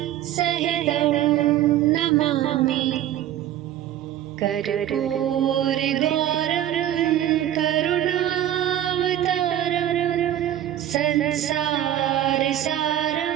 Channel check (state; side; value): quieter; left; 11.9 dB